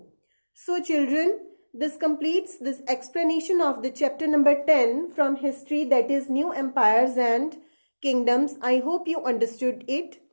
So children, this completes this explanation of the chapter number 10 from history, that is New Empires and Kingdoms. I hope you understood it.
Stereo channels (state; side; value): inverted; both; correlation -1.00